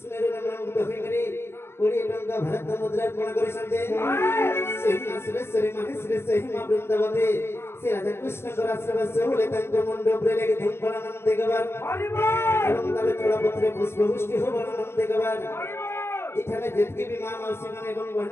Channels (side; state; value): right; late; 0.12 ms